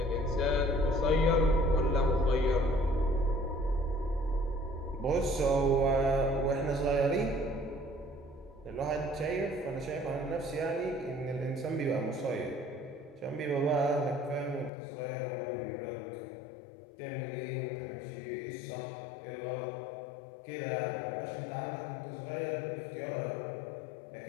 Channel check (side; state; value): right; drops out; at 14.7 s